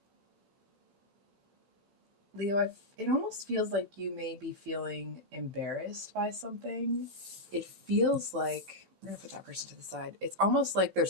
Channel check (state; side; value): late; left; 12 ms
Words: Leo, it almost feels like you may be feeling embarrassed by something. It feels like we're gonna put that person to the side. It's almost like